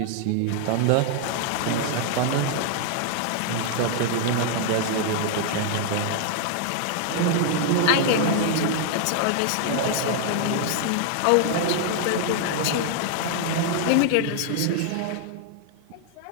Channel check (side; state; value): both; different; correlation 0.00